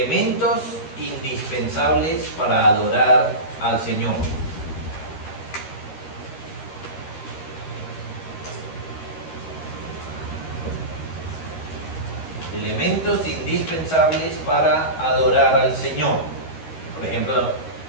indispensables para adorar al Señor. Elementos indispensables para adorar al Señor. Por ejemplo,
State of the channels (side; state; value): right; late; 13 ms